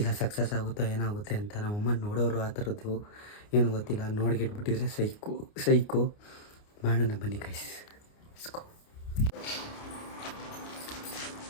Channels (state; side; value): late; right; 29 ms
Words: ಸಕ್ಸಸ್ ಆಗುತ್ತೋ ಏನಾಗುತ್ತೆ ಅಂತ. ನಮ್ಮಮ್ಮ ನೋಡೋರು ಆ ಥರದ್ದು ಏನು ಗೊತ್ತಿಲ್ಲ. ನೋಡ್ಗಿಟ್ಬಿಟ್ಟಿದ್ರೆ ಸೈಕು ಮಾಡೋಣ ಬನ್ನಿ ಗೈಸ್. ಇಸ್ಕೋ